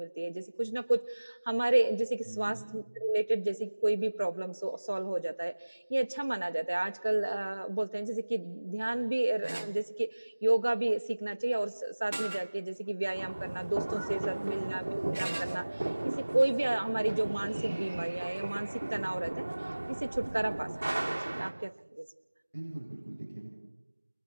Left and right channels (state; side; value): inverted; both; correlation -1.00